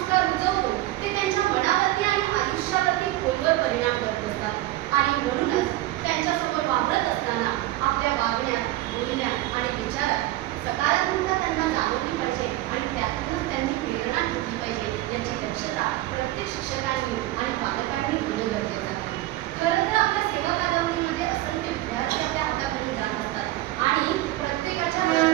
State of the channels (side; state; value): left; quieter; 16.5 dB